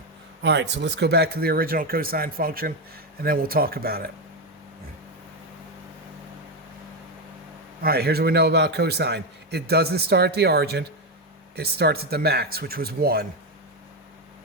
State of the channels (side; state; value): both; normal; correlation 0.09